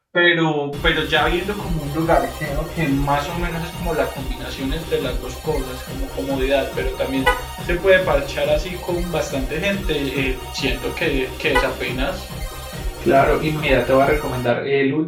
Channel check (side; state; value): both; identical; correlation 1.00